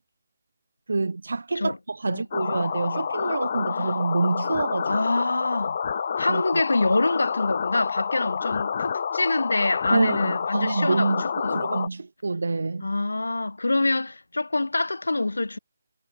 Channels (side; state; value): both; inverted; correlation -0.93